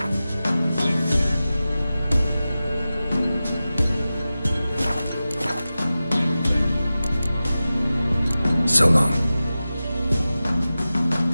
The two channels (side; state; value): both; inverted; correlation -0.95